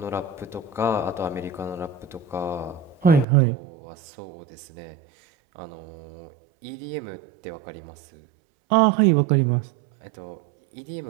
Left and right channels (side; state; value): left; drops out; at 3.2 s